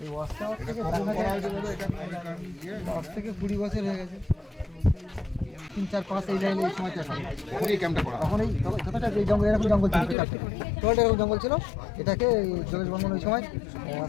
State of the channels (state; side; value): drops out; right; at 10.2 s